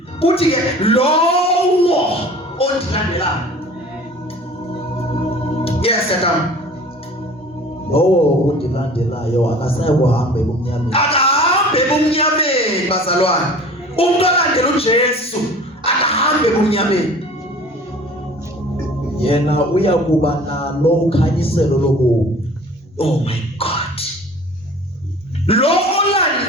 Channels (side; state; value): both; normal; correlation 0.45